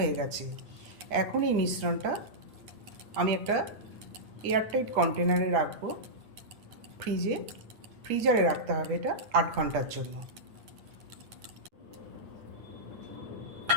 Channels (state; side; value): late; left; 9.6 ms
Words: গেছে। এখন এই মিশ্রণটা আমি একটা এয়ারটাইট কন্টেনারে রাখবো। ফ্রিজারে রাখতে হবে এটা 8 ঘন্টার জন্য।